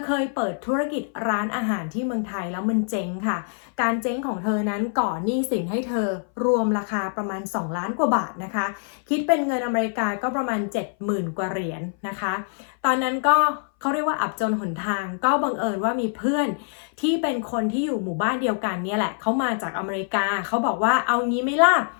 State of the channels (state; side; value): silent; right; 59 dB below the other